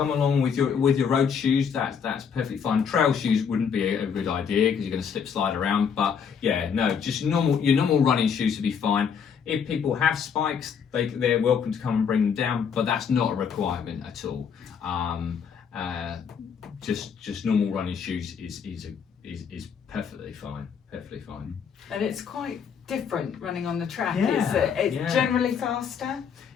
along with your road shoes. That's perfectly fine. Trail shoes wouldn't be a good idea because you're going to slip slide around. But yeah, no, just your normal running shoes would be fine. If people have spikes, they're welcome to come and bring them down, but that's not a requirement at all. Just normal running shoes is perfectly fine. Perfectly fine. And it's quite different running on the track. Yeah, It's generally faster.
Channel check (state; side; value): quieter; right; 7.0 dB